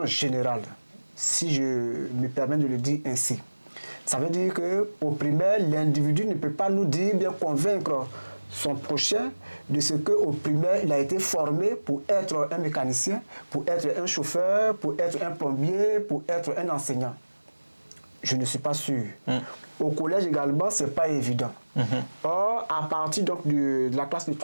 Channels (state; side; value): inverted; both; correlation -1.00